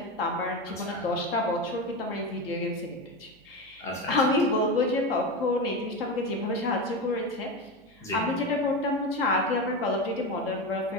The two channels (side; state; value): right; noise; hum, 29 dB below the sound